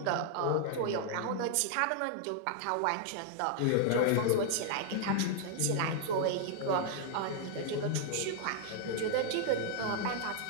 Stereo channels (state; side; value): different; both; correlation 0.00